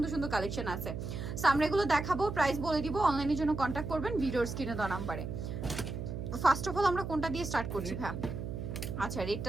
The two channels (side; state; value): right; noise; hum, 5 dB below the sound